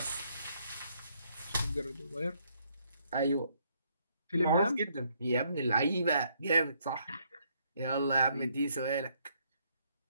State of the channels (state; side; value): inverted; both; correlation -0.70